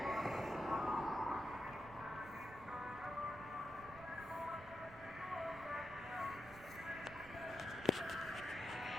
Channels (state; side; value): noise; right; rumble, 16 dB below the sound